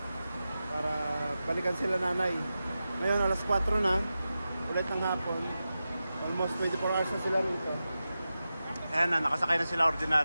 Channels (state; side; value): inverted; both; correlation -0.92